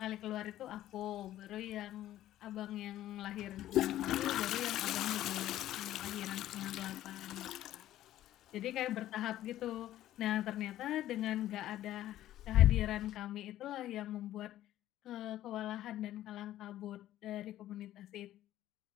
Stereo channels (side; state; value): right; quieter; 13.4 dB